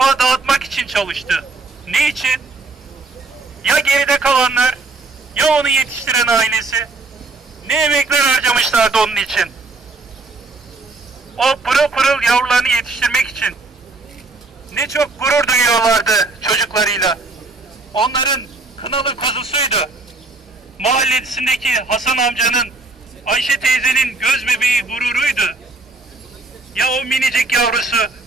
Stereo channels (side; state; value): left; quieter; 3.5 dB